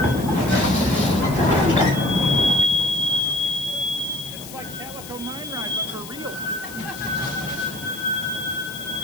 It's like Calico Mine Ride, but for real.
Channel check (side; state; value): left; noise; hiss, 14 dB below the sound